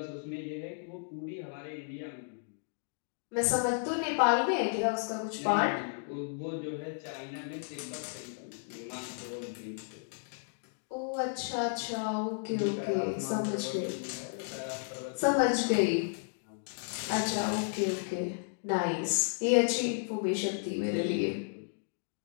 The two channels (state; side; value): silent; right; digital silence